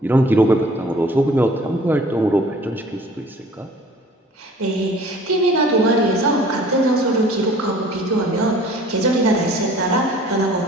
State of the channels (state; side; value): normal; both; correlation 0.50